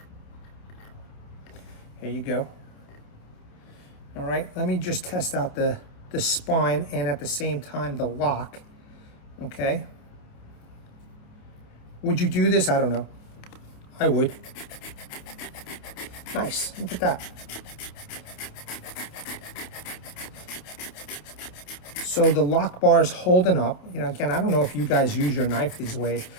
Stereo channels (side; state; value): right; late; 28 ms